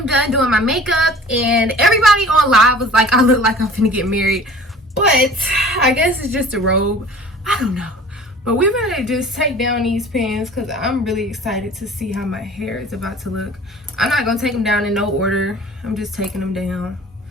done doing my makeup and everybody on live was like, I look like I'm finna get married. But I guess it's just a robe. I don't know. But we're gonna just take down these pins because I'm really excited to see how my hair is about to look. I'm not gonna take them down in no order. I'm just taking them down.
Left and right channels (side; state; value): both; normal; correlation 0.45